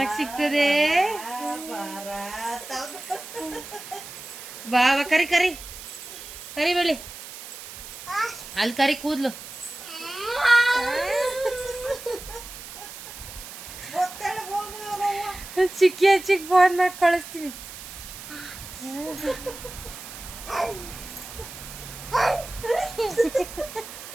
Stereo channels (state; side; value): noise; right; hiss, 13 dB below the sound